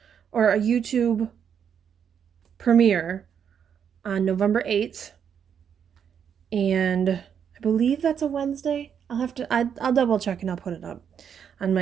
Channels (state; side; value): quieter; left; 7.9 dB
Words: or a YouTube premiere on November 8th. And I believe that's a Wednesday. I'll double check and I'll put it up on